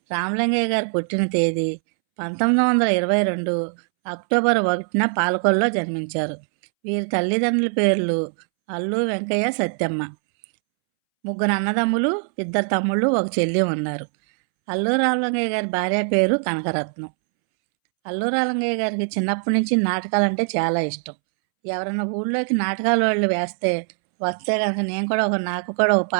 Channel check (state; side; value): silent; left; 64 dB below the other